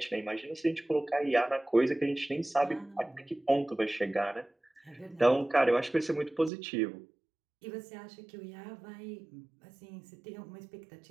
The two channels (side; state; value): left; drops out; at 6.5 s